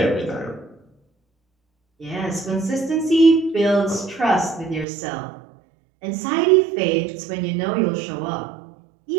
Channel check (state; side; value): drops out; left; at 4.9 s